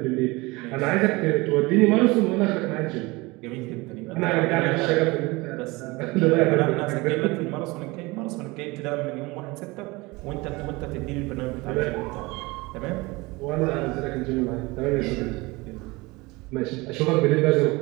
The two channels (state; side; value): quieter; left; 23.4 dB